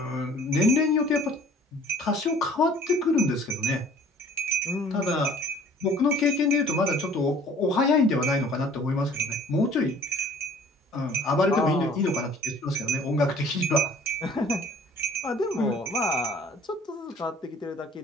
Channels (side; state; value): both; normal; correlation 0.51